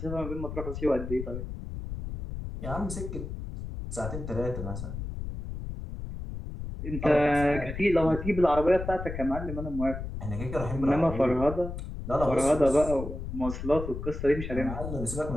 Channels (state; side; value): noise; left; rumble, 7 dB below the sound